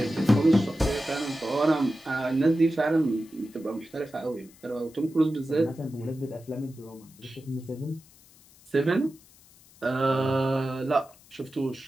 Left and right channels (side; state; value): left; noise; hiss, 26 dB below the sound